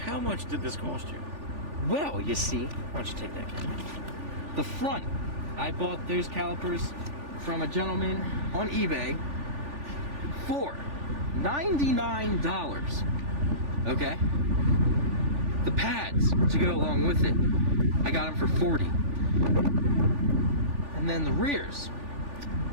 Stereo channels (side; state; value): left; late; 3.4 ms